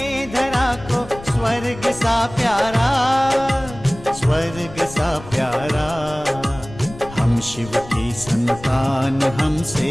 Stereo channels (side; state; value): left; noise; rumble, 16 dB below the sound